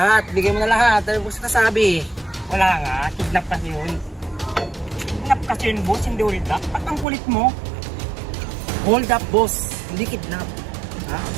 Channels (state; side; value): drops out; left; at 7.1 s